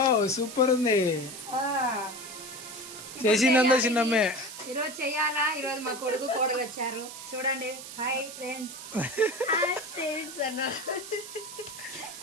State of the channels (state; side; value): noise; right; hiss, 12 dB below the sound